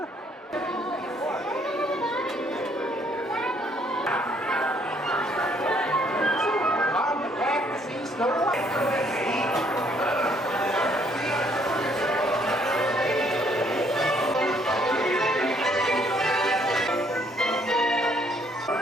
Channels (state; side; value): normal; both; correlation 0.66